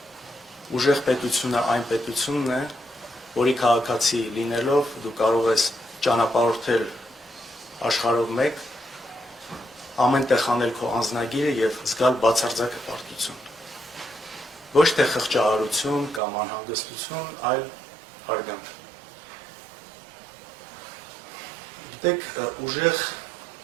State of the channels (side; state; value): left; drops out; at 16.2 s